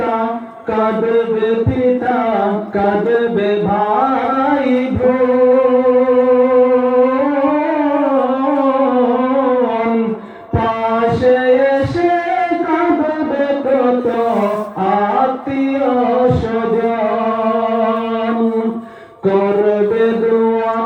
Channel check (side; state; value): both; identical; correlation 1.00